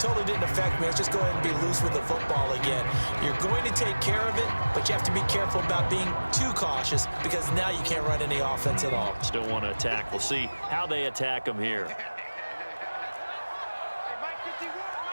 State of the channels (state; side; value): inverted; both; correlation -1.00